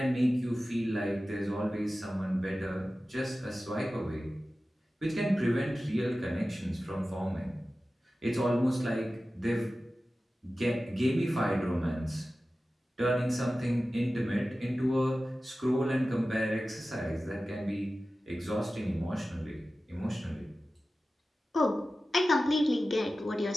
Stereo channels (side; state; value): both; normal; correlation 0.95